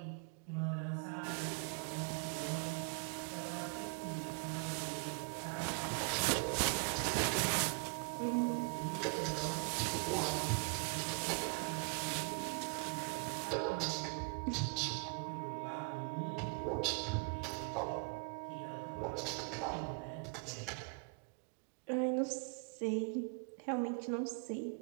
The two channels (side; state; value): left; quieter; 34.0 dB